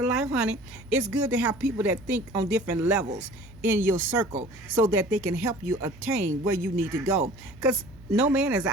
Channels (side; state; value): right; noise; hum, 21 dB below the sound